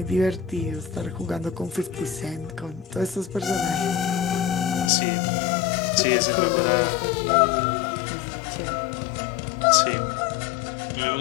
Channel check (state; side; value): drops out; right; at 4.9 s